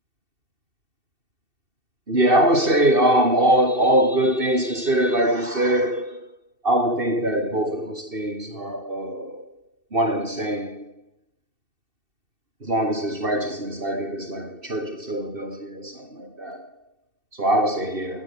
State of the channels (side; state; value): left; late; 2.7 ms